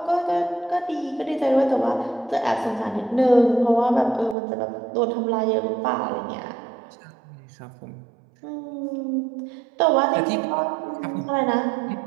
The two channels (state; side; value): drops out; left; at 4.4 s